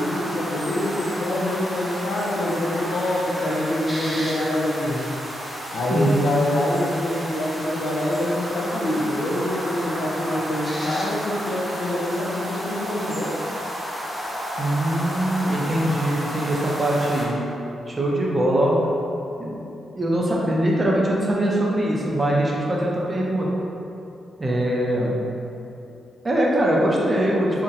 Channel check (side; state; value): both; normal; correlation 0.83